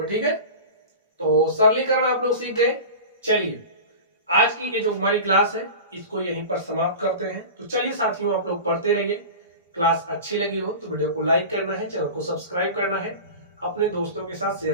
ठीक है, तो सरलीकरण आप लोग सीख गए। चलिए आज की ये जो हमारी क्लास है, इसको यहीं पर समाप्त करते हैं। तो चलिए साथियों, आप लोग पढ़ते रहिए। क्लास अच्छी लगी हो तो वीडियो को लाइक करना है, चैनल को सब्सक्राइब करना है, अपने दोस्तों के साथ शेयर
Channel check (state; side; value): inverted; both; correlation -0.32